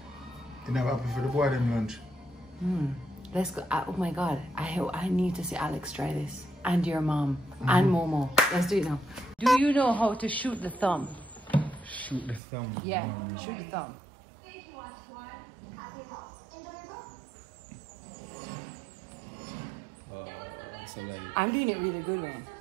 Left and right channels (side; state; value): left; drops out; at 12.4 s